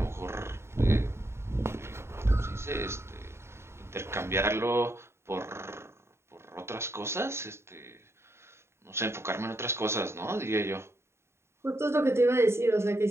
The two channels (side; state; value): left; late; 0.13 ms